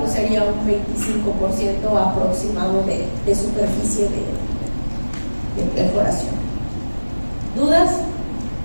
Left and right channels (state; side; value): inverted; both; correlation -1.00